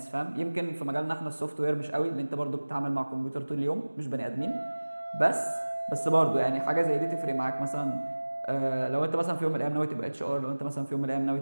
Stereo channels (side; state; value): both; inverted; correlation -1.00